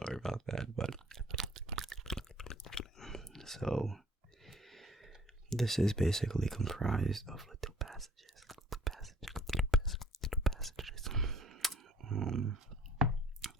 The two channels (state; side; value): normal; both; correlation 0.55